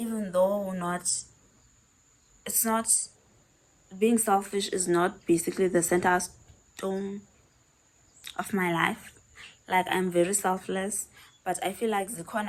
though it's not, being selfish is not basically the center stone of my life. Like I'm very selfless, but I feel like the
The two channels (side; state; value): both; identical; correlation 1.00